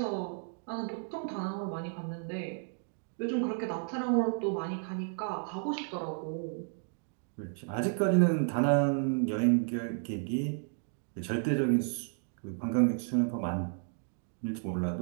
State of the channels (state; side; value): silent; left; 56 dB below the other